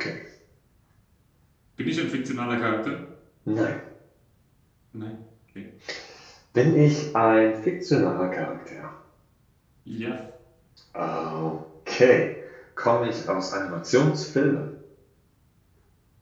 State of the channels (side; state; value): both; identical; correlation 1.00